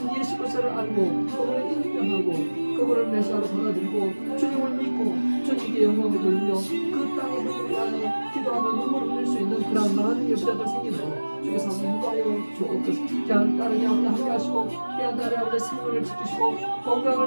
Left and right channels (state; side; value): inverted; both; correlation -1.00